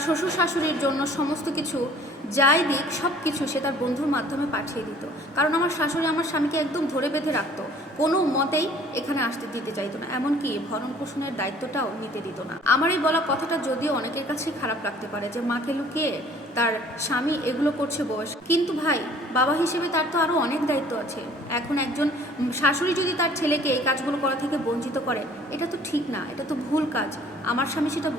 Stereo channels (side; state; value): both; normal; correlation 0.54